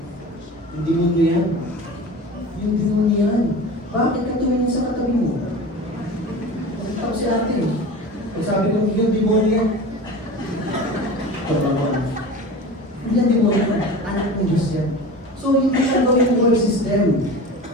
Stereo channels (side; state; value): both; normal; correlation 0.34